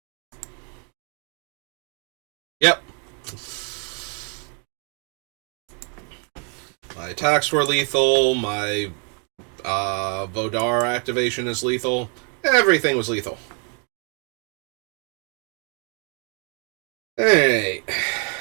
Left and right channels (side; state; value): left; quieter; 38.5 dB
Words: Yep. My attacks were lethal, my Vodar activation is lethal. Everything was lethal. Alright.